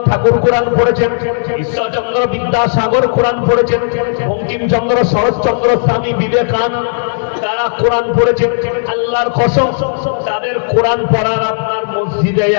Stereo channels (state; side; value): silent; right; digital silence